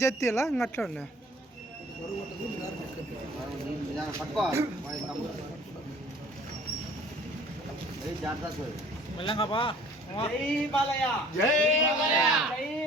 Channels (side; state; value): both; normal; correlation 0.52